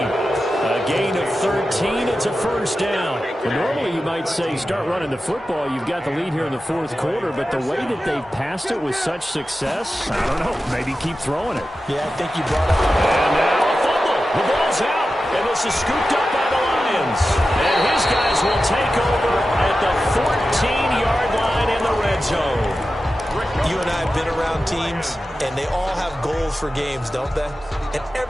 gain of 13, it's a 1st down. Well, normally you might say start running the football. You've got the lead here in the 4th quarter, but the way that they've passed it with such success, I don't know, maybe keep throwing it. Yeah, I think you brought up. And now a fumble. The ball's out, and this is scooped up by the Lions. And his guys will take over at the 14-yard line in the red zone. You and I have been around teams, and they all have goals for games, don't they? And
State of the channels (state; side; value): normal; both; correlation 0.93